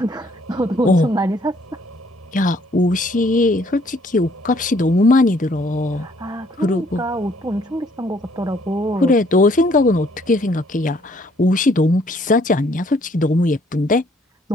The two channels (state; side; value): normal; both; correlation 0.64